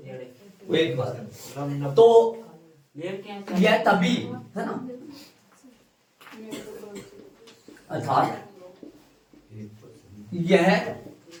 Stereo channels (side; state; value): both; identical; correlation 1.00